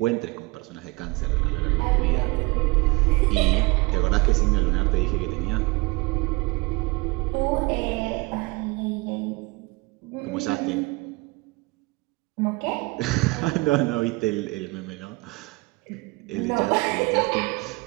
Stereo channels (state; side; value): quieter; left; 25.1 dB